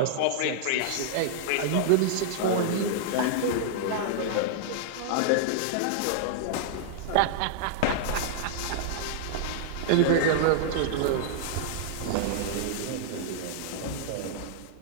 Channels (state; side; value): different; both; correlation -0.01